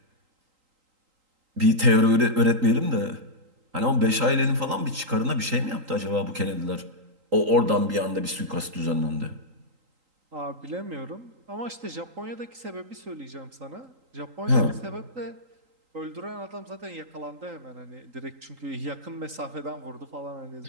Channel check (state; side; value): late; left; 3.8 ms